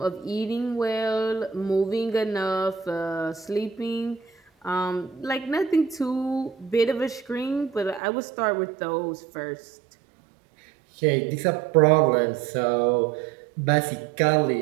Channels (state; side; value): drops out; left; at 8.0 s